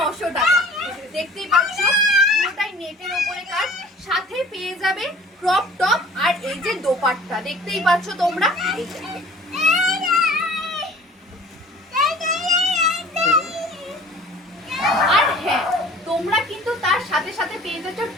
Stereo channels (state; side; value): normal; both; correlation 0.48